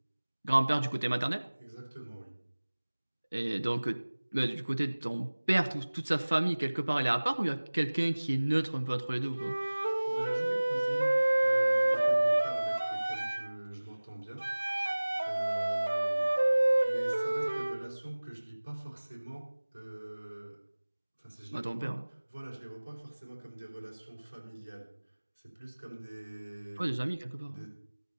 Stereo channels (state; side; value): inverted; both; correlation -1.00